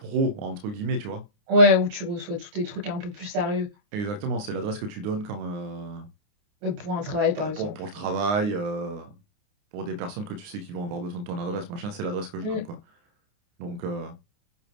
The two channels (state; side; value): late; left; 29 ms